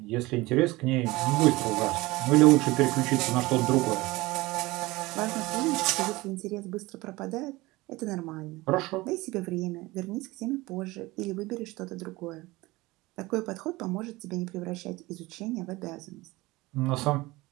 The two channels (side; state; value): left; quieter; 20.9 dB